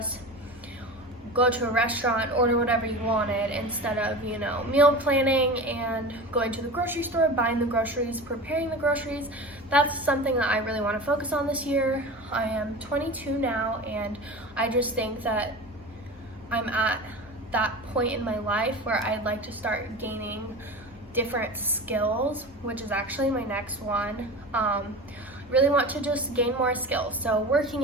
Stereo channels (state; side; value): normal; both; correlation 0.31